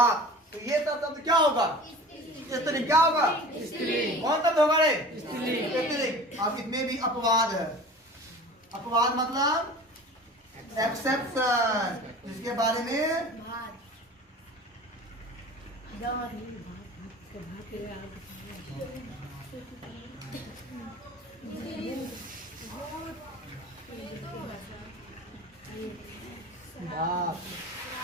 तो ये सब शब्द क्या होगा? स्त्रीलिंग। क्या होगा? स्त्रीलिंग। कौन शब्द होगा रे? स्त्रीलिंग। अब इसमें भी अपवाद है। अपवाद मतलब एक्सेप्शन, जिसके बारे में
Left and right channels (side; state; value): both; normal; correlation 0.39